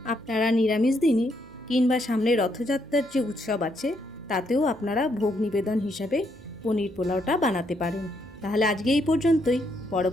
আপনারা নিরামিষ দিনে কিংবা সামনে রথযাত্রার যে উৎসব আছে তাতেও আপনারা ভোগ নিবেদন হিসাবে পনির পোলাওটা বানাতে পারেন। তাহলে আজকে এই পর্যন্তই।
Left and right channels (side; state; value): right; noise; hum, 23 dB below the sound